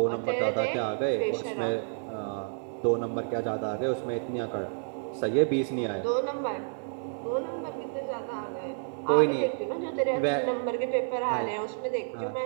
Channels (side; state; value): left; silent; 58 dB below the other